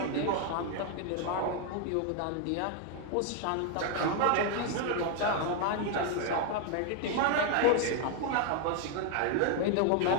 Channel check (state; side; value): different; both; correlation 0.01